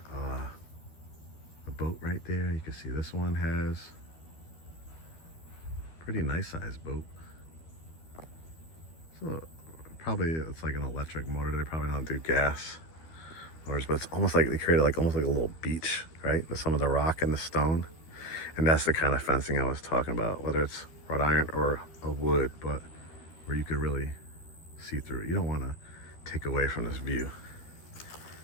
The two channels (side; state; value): right; late; 12 ms